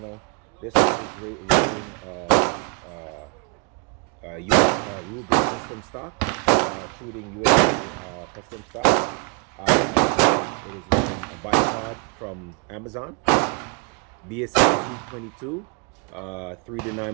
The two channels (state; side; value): quieter; left; 31.0 dB